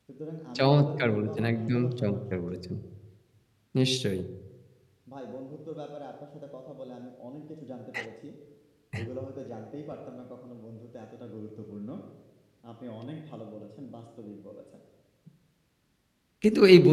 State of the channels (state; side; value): identical; both; correlation 1.00